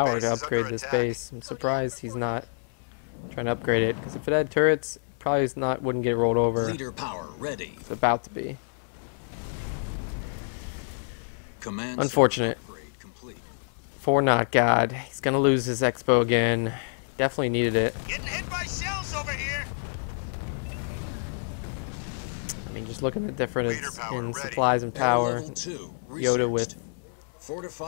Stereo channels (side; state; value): right; silent; 60 dB below the other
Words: base to is upgrade under this attack. base. I'm surprised he's not trying to upgrade it, because if it had turrets, probably wouldn't get rolled over. Leader power ready. It's about to be. Command Unfortunate. center upgrade complete. For NotGod, he's gonna lose his expo again. Definitely needed it. Getting hit by shells over here. I mean, just looking at the difference Leader power in ready. supplies and Air power. level 2 Yoda with researched.